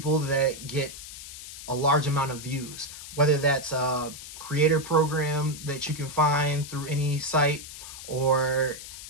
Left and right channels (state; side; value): noise; left; hiss, 12 dB below the sound